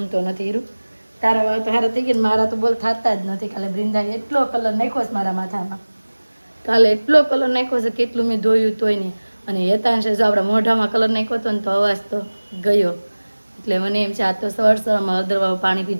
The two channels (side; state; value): both; inverted; correlation -1.00